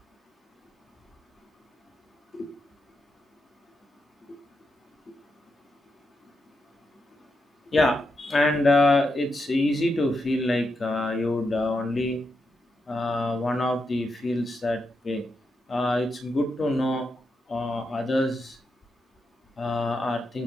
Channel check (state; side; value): normal; both; correlation 0.84